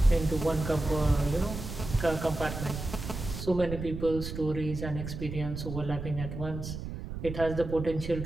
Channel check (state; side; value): noise; right; rumble, 7 dB below the sound